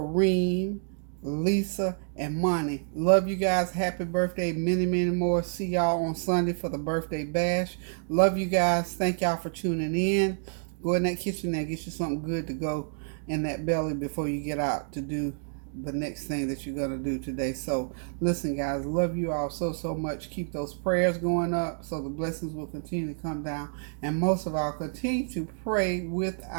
Lisa, and Monty. Love you guys. Happy birthday. Many, many more. See y'all on Sunday for the birthday bash. Love you guys. Thank y'all for tuning in. Go in that kitchen there, get you something good to go in that belly before you get out to do the next thing that you're going to do today. So listen, guys, love you all so much. Keep those prayers going up so the blessings will continue to come down, and most of all, continue to pray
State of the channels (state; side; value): silent; left; digital silence